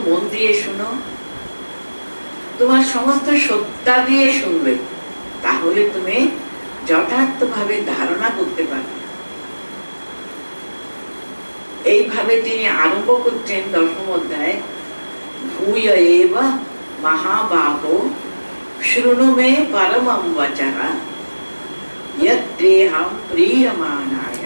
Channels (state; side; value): inverted; both; correlation -1.00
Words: মন দিয়ে শুনো, তোমার সমস্ত সত্তা দিয়ে শুনবে, তাহলে তুমি যথার্থভাবে ধারণা করতে পারবে। এইভাবে তিনি আরম্ভ করছেন দশম অধ্যায়, ভূয় এব মহাবাহো শৃণু মে পরমং বচঃ यद्देहं प्रीयमाणाय,